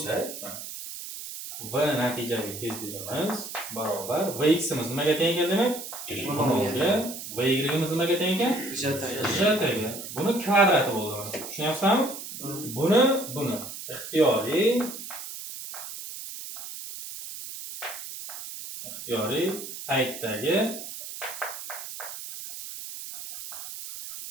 v natijaviy tezligimiz barobar vx imiz nimaga teng keldi demak? V0 ga va yimiz nimaga teng ekan? J ga. Buni kvadrati bo'ladi. Tushunyapsizmi? Buni ixtiyoriy paytdagi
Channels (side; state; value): right; noise; hiss, 10 dB below the sound